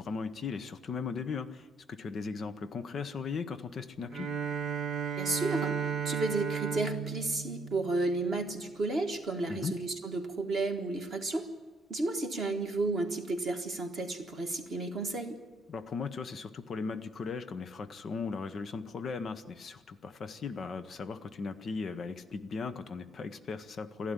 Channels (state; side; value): normal; both; correlation 0.68